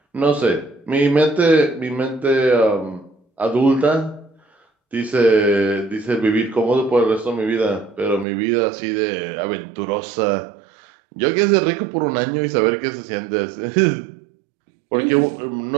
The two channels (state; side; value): drops out; left; at 8.2 s